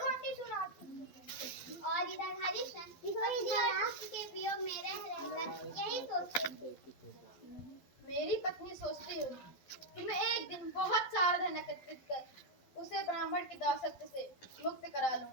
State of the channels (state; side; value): late; right; 12 ms